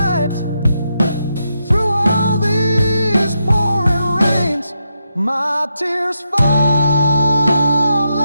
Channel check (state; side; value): inverted; both; correlation -0.84